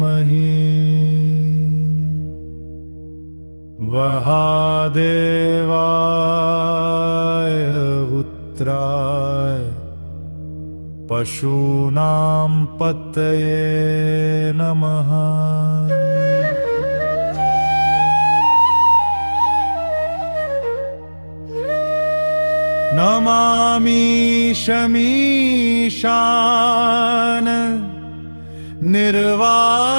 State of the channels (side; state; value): both; inverted; correlation -1.00